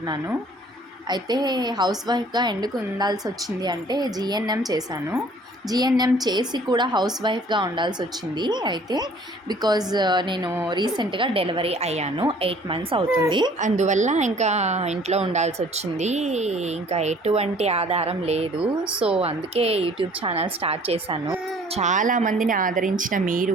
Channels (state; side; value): normal; both; correlation 0.54